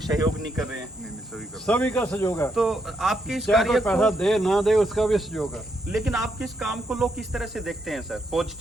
सहयोग नहीं कर रहे हैं। नहीं, सभी का। सभी का सहयोग है। तो आपके इस चाहे कार्य कोई पैसा को, दे ना दे उसका भी सहयोग है। लेकिन आपके इस काम को लोग किस तरह से देखते हैं सर?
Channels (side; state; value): both; normal; correlation 0.78